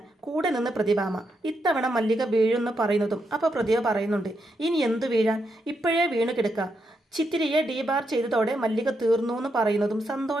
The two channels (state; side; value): normal; both; correlation 0.81